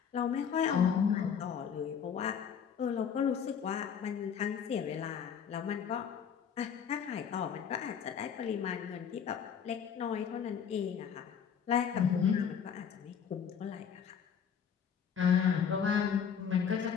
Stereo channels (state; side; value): quieter; right; 7.5 dB